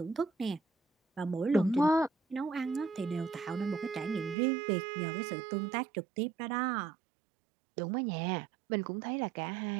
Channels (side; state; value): left; drops out; at 4.4 s